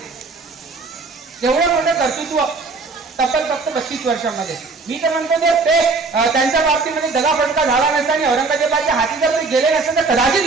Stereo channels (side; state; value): left; quieter; 4.1 dB